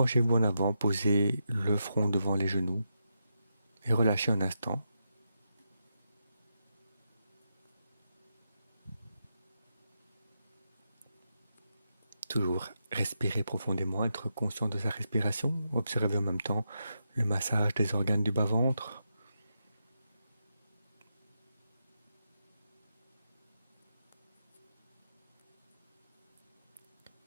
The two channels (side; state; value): both; inverted; correlation -0.85